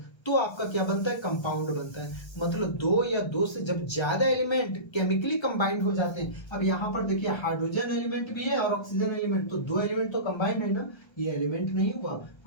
तो आपका क्या बनता है, कंपाउंड बनता है। मतलब दो या दो से जब ज्यादा एलिमेंट केमिकली कंबाइंड हो जाते हैं। अब यहाँ पर देखिए हाइड्रोजन एलिमेंट भी है और ऑक्सीजन एलिमेंट, तो दो एलिमेंट तो कंबाइंड है ना, ये एलिमेंट नहीं हुआ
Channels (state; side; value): late; right; 1.3 ms